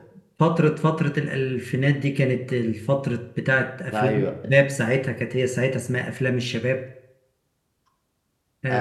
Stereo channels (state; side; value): identical; both; correlation 1.00